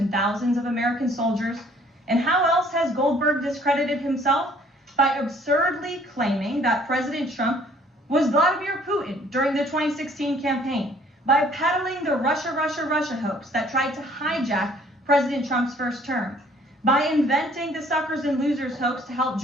thousands of American soldiers. And how else has Goldberg discredited himself? By absurdly claiming that President Trump was Vladimir Putin during the 2016 campaign, by peddling the Russia hoax that tried to hijack President Trump's first term, by inventing the suckers and losers hoax to help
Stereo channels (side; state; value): both; normal; correlation 0.58